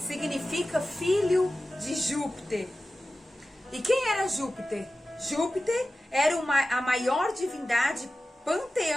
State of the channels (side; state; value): both; normal; correlation 0.94